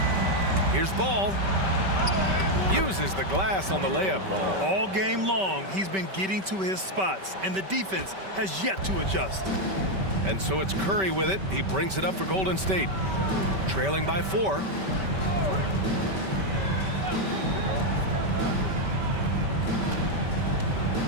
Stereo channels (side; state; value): left; late; 5.2 ms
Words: Here's Ball. Uses the glass on the layup. All game long, he's been getting to his spots, and the defense has yet to adjust. And so it's Curry with it. He brings it up for Golden State. Trailing by 4.